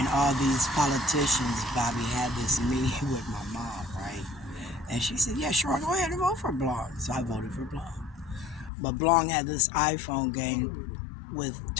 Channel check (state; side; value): drops out; right; at 8.7 s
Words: all these politicians, Bobby, had this meeting with my mom, right? And she said, yeah, sure, go ahead and vote for Blong. So I voted for Blong. But Blong had this iPhone game with